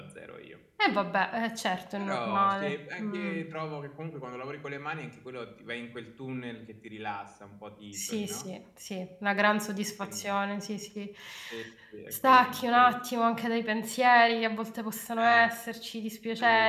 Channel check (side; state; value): both; identical; correlation 1.00